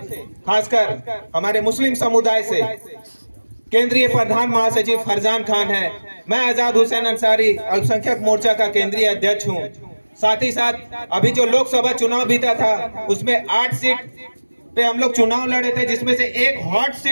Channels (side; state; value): both; inverted; correlation -1.00